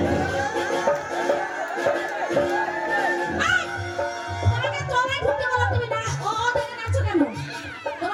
তোমাকে তলায় ঢুকতে বললাম, তুমি না দেখে নাচো কেন?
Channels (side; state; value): both; identical; correlation 1.00